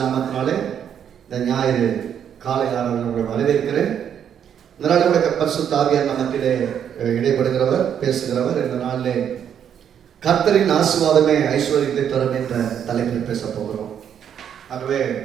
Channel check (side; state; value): left; quieter; 8.7 dB